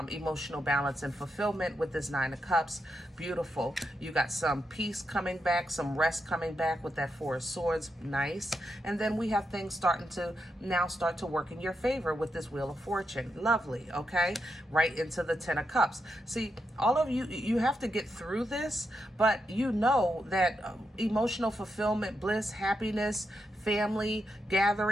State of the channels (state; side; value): normal; both; correlation 0.84